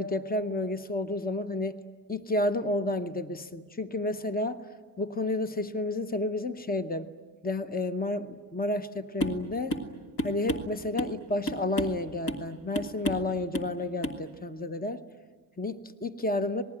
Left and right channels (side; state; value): both; normal; correlation 0.32